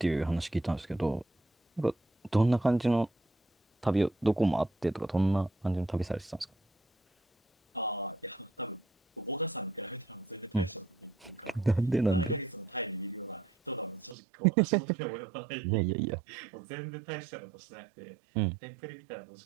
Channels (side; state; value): left; drops out; at 14.2 s